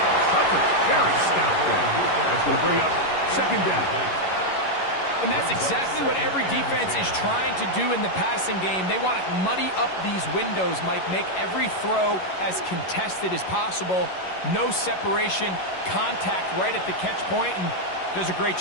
Coverage very stout there. That's going to bring up 2nd down. And that's exactly what every defense is trying to do in the passing game. They want to muddy up these windows, Mike, make every throw as contested as possible. No separation, contact right at the catch point, and does a great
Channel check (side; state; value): right; late; 11 ms